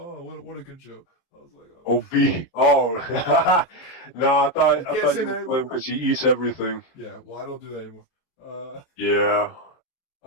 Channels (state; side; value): late; right; 23 ms